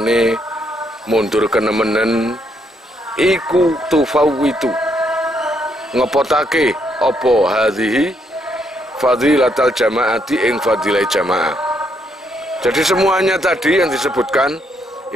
mundur kenemenen iku tufawitu ngepotake apa hadhihi fadilatal jamaati ing fadilah jamaah. Jadi semuanya tadi yang disebutkan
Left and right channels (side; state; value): both; normal; correlation 0.74